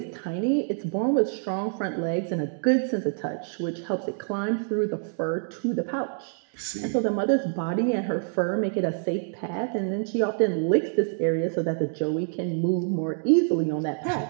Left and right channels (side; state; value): left; silent; digital silence